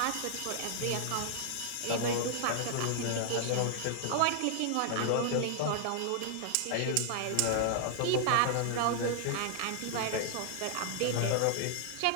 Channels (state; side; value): different; both; correlation -0.01